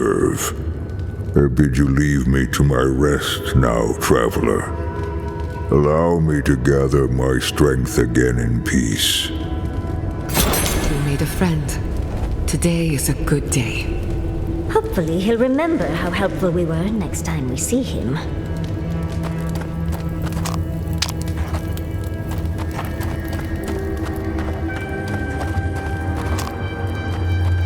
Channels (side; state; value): both; identical; correlation 1.00